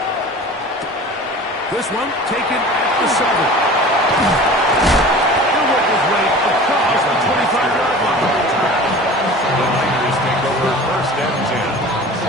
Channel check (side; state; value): both; normal; correlation 0.40